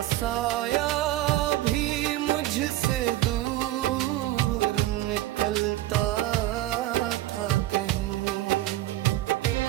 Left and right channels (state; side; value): quieter; left; 15.2 dB